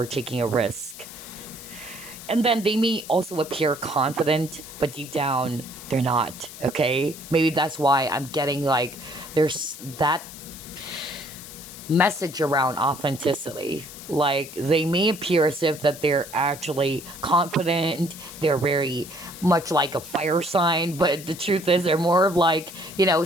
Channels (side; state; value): left; noise; hiss, 14 dB below the sound